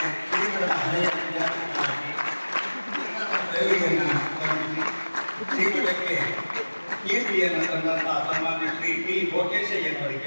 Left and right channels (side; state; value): both; inverted; correlation -1.00